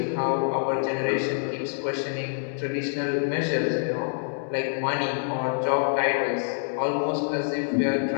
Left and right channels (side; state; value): right; silent; digital silence